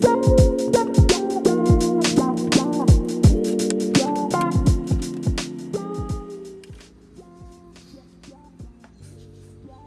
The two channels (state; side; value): identical; both; correlation 1.00